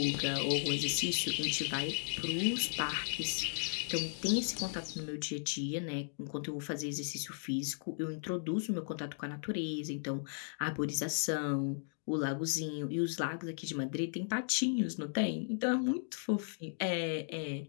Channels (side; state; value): right; silent; digital silence